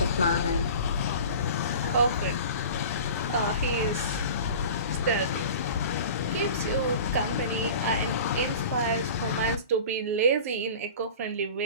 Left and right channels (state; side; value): inverted; both; correlation -0.38